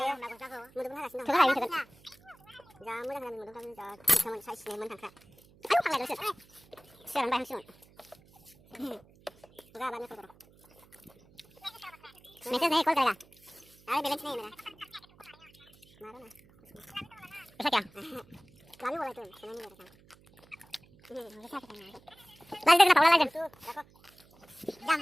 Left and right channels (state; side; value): noise; right; hum, 27 dB below the sound